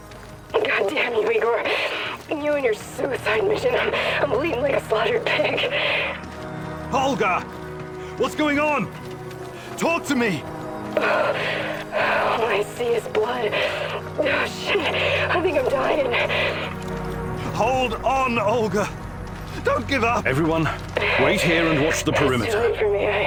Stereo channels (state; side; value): identical; both; correlation 1.00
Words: God damn you, Igor. You and your suicide mission. I'm bleeding like a slaughtered pig. Olga! What's going on? Talk to me! All I see is blood. Oh, shit. I think I'm dying. Hold on, Olga! Don't give up! Everyone, wait here and watch the perimeter. It's too late for me.